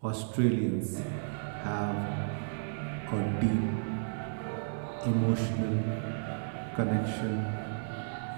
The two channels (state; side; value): silent; left; digital silence